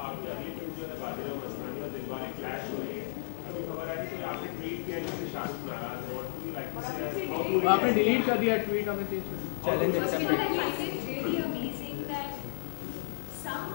आपकी अगली फिल्म जो है बाजीराव मस्तानी और दिलवाले क्लैश हो रही है, अभी खबर आई थी कि आपने ट्वीट किया जिससे शाहरुख नाराज है। आपने डिलीट कर दिया ट्वीट, हमें चीज। First of all, I find it really amazing that some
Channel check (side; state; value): right; silent; 56 dB below the other